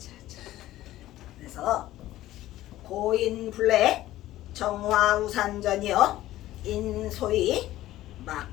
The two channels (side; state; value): right; quieter; 15.0 dB